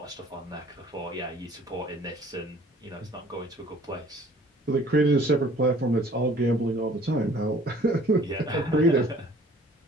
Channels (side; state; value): both; normal; correlation 0.53